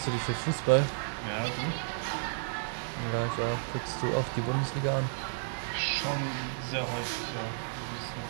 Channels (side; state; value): left; silent; digital silence